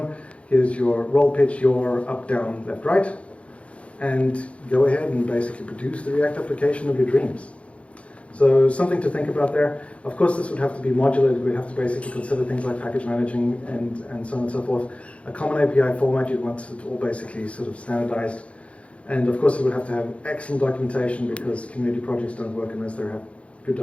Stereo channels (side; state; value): right; late; 0.062 ms